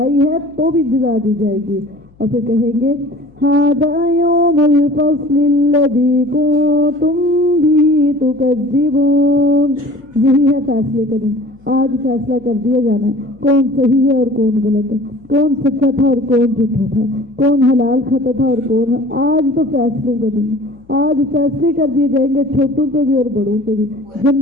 ہے تو بھی جزا دی جائے گی. اور پھر کہیں گے ھذا یوم الفصل الذی کنتم بہ تکذبون، یہی ہے فیصلے کا دن. آج فیصلہ کر دیا جانا ہے کون صحیح ہے اور کون غلط ہے، کون سچا تھا اور کون جھوٹا تھا، کون حلال کھاتا تھا اور کون. آج تو فیصلوں کا دن ہے. آج فیصلے کر دیے جائیں گے چھوٹوں کے بھی اور بڑوں کے بھی،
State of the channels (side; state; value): left; noise; hum, 29 dB below the sound